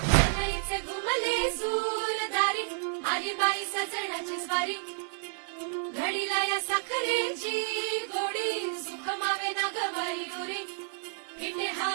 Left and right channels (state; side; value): silent; left; digital silence